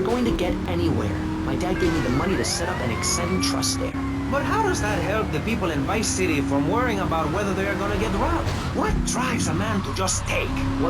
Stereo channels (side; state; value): both; identical; correlation 1.00